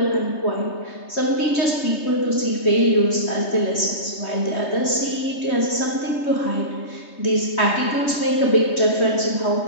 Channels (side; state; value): right; late; 3.2 ms